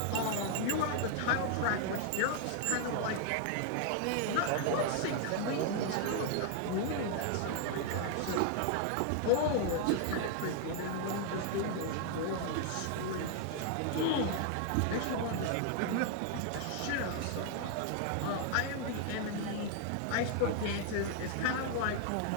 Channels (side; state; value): both; different; correlation 0.00